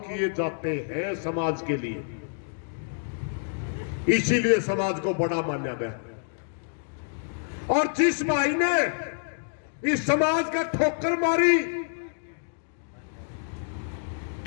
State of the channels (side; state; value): right; silent; digital silence